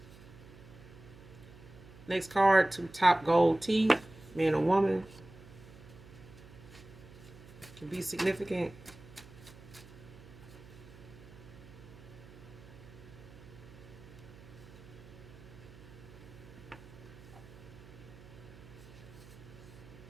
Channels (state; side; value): noise; right; hum, 19 dB below the sound